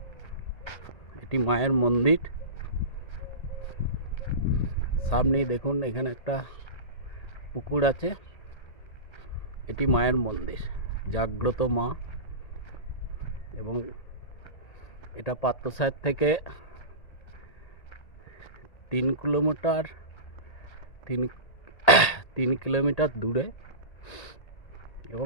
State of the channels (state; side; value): late; right; 1.8 ms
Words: এটি মায়ের মন্দির। সামনেই দেখুন এখানে একটা পুকুর আছে। এটি মায়ের মন্দির, জাগ্রত মা। এবং এটা পাত্রসাহেব থেকে 3 কিলোমিটার দূরে